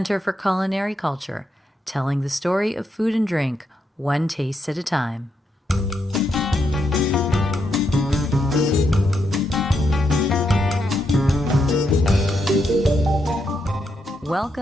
for Culinary Culture, telling the story of food and drink, one taste at a time.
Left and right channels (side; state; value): both; normal; correlation 0.81